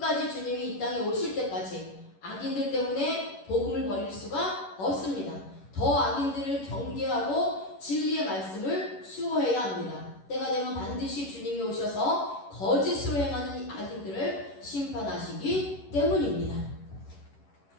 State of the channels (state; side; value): late; right; 11 ms